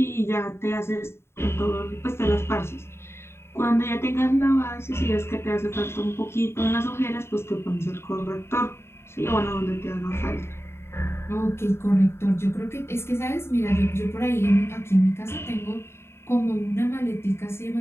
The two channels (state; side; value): late; right; 0.12 ms